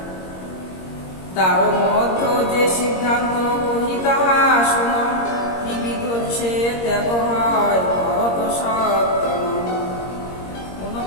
তার মধ্য যে সিদ্ধান্ত কহি তাহা শুন, ত্রিবিধ সে ত্যাগ হয় ভরত সত্যম।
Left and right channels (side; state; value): right; late; 21 ms